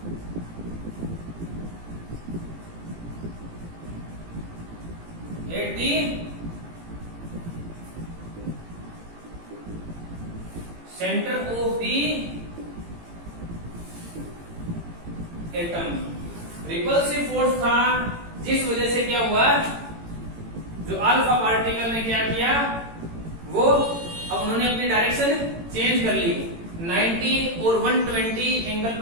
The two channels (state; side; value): late; left; 18 ms